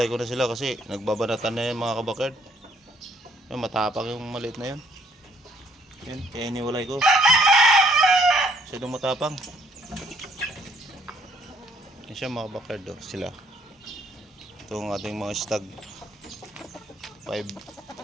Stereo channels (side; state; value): both; normal; correlation 0.65